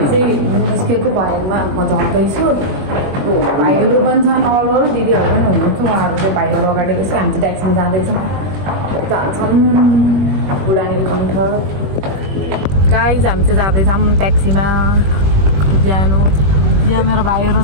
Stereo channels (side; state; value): left; late; 21 ms